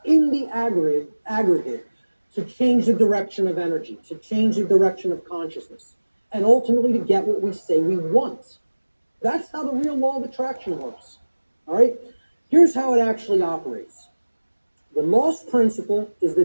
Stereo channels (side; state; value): both; inverted; correlation -1.00